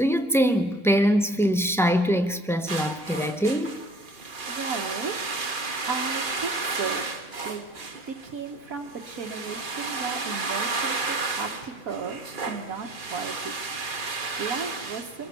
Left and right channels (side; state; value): both; normal; correlation 0.52